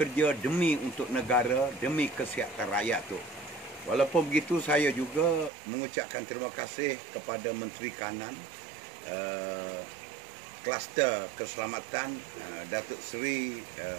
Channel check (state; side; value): drops out; left; at 5.5 s